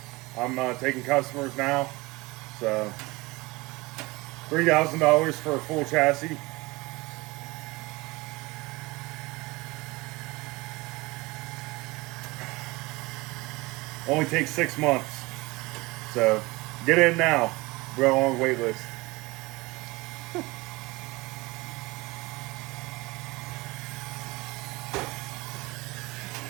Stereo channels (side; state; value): left; quieter; 23.0 dB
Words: I'm taking customers now. So, $3,000 for a full chassis. Only takes 6 months. So, get in now. We're on a wait list.